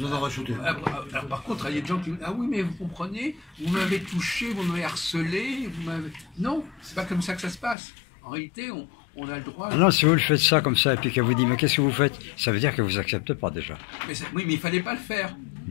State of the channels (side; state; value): right; drops out; at 7.8 s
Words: en rajouter. Alors, par contre, il y a des gens qui disent, ah oui, mais vous comprenez, vous m'avez touché, vous m'avez harcelé, vous m'avez... Non, c'est pas comme ça que ça se passe. En réalité, on a le droit... Ah non, si vous le faites ça comme ça, et puis qu'elle vous dit, mais qu'est-ce que vous faites? Ça veut dire que vous acceptez pas déjà. Oui, mais il fallait pas le faire.